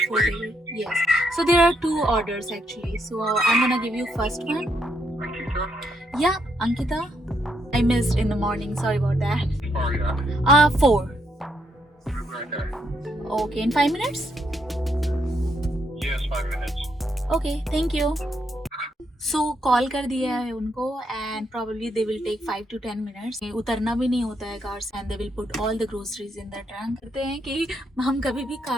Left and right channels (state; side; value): normal; both; correlation 0.76